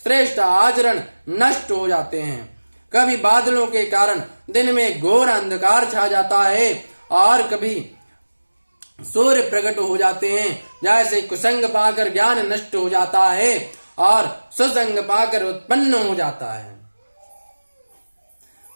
श्रेष्ठ आचरण नष्ट हो जाते हैं। कभी बादलों के कारण दिन में घोर अंधकार छा जाता है और कभी सूर्य प्रकट हो जाते हैं। जैसे कुसंग पाकर ज्ञान नष्ट हो जाता है और सुसंग पाकर उत्पन्न हो जाता है।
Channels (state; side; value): inverted; both; correlation -1.00